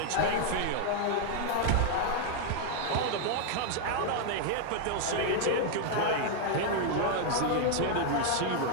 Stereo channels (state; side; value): different; both; correlation 0.00